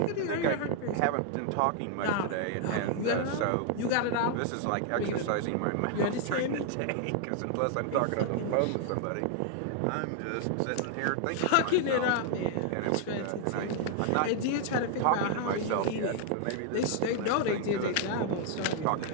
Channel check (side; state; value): both; different; correlation 0.00